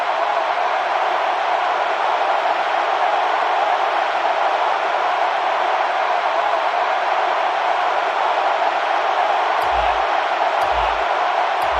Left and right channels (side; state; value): both; identical; correlation 1.00